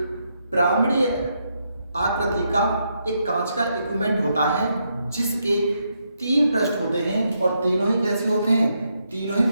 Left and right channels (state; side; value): inverted; both; correlation -0.80